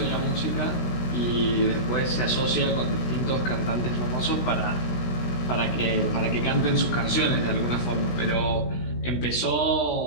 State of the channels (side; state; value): right; late; 16 ms